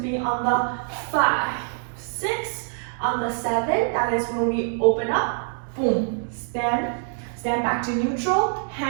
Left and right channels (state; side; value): silent; left; 62 dB below the other